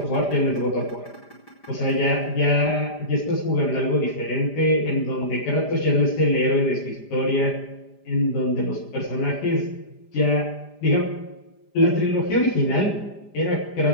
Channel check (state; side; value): late; right; 5.0 ms